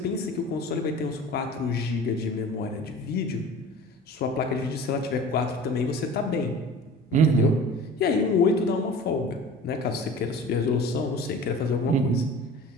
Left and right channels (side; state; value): both; normal; correlation 0.41